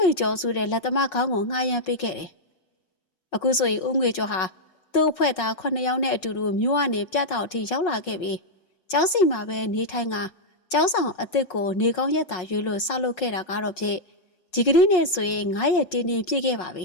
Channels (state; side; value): late; right; 5.5 ms